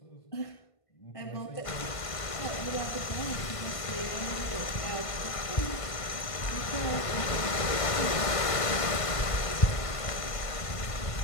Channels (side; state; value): right; late; 1.5 ms